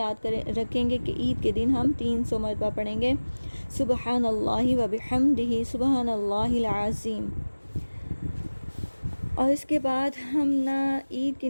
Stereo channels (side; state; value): both; inverted; correlation -1.00